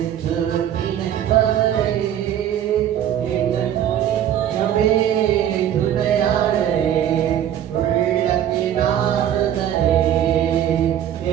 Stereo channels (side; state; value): left; quieter; 10.6 dB